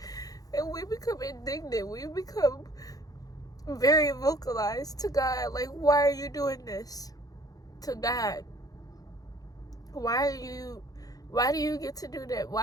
And we become indignant. We become very vocalized to God. Like, why are you doing this to God? Why do you get to do that?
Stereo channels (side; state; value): right; late; 0.18 ms